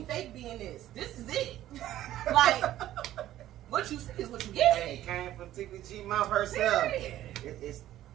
fake being this. This is it. Like, what you see is what you get. Hey, it came from TikaG mouth herself. Period.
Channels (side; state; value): left; quieter; 13.4 dB